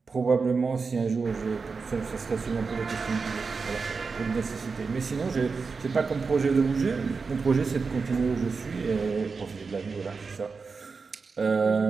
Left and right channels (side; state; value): left; quieter; 4.8 dB